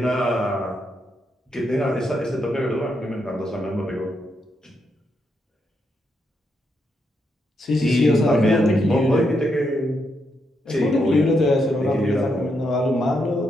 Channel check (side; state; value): both; normal; correlation 0.80